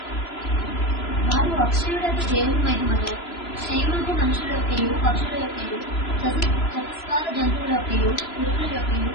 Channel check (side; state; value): right; late; 3.0 ms